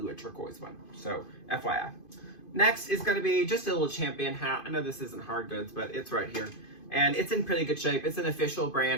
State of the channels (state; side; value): late; right; 2.5 ms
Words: a turquoise one. So FYI. Next is going to be just a little Champion hat. I know this isn't hard goods, but it's right here. And it's in pretty good shape. It's an official